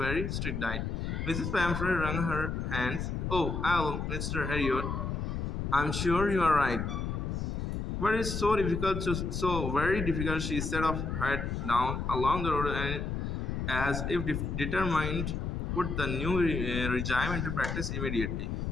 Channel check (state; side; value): noise; left; rumble, 2 dB below the sound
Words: strict diet. Mrs. Pamphret wrung her hands. Oh, Mr. Harriot, I'm sure you are right. But it's so very difficult. She set off head down along the road and as if determined put the new regime into practice immediately.